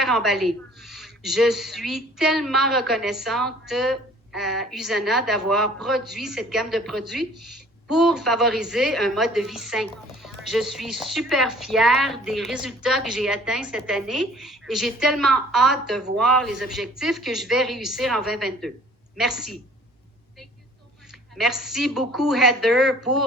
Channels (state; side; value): normal; both; correlation 0.53